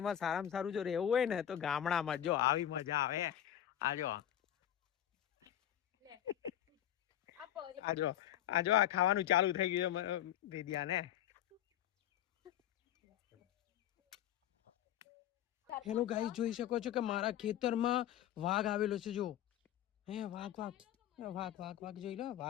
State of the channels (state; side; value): quieter; right; 11.5 dB